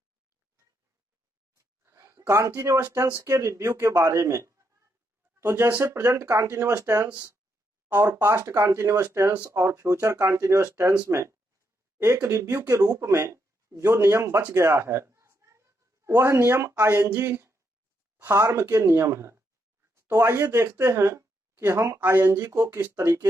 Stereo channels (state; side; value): normal; both; correlation 0.79